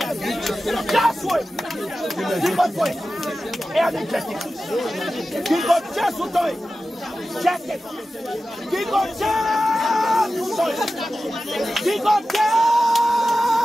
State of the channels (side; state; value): both; normal; correlation 0.94